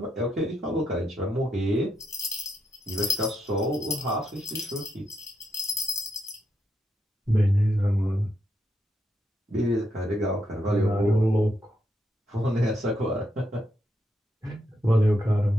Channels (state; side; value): normal; both; correlation 0.80